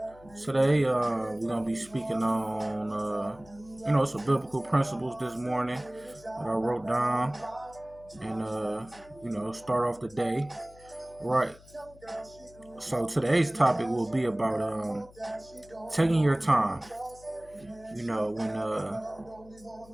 Today, we're going to be speaking on, some biblical principles this morning that I wrote down and, start off the day. Right. So today's topic will be about taking your time. When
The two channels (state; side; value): noise; left; hum, 23 dB below the sound